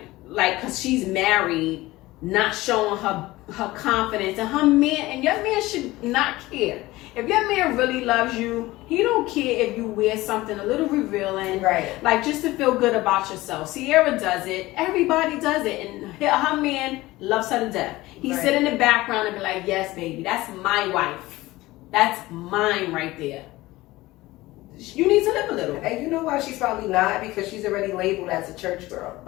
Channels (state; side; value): quieter; right; 18.7 dB